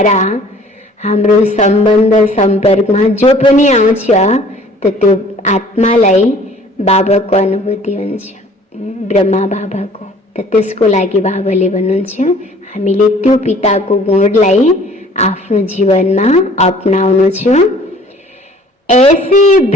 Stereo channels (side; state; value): both; normal; correlation 0.52